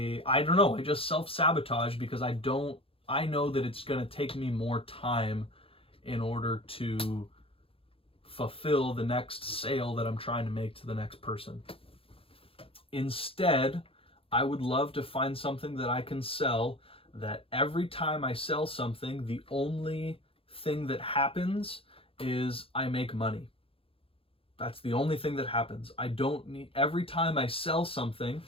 don't know, I just self-sabotage because I know that it's going to take me more time in order to fulfill the next sale that I'm trying to make to the next person. Instead, I would love to find something that I can sell that every time I sell something, the only thing that happens is I make money. That's the only thing that happens. I don't need, every time I sell something,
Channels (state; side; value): late; right; 0.27 ms